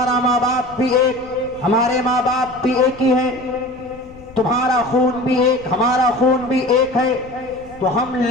ماں باپ بھی ایک، ہمارے ماں باپ بھی ایک ہی ہیں، تمہارا خون بھی ایک، ہمارا خون بھی ایک ہے، تو ہم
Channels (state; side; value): noise; left; rumble, 21 dB below the sound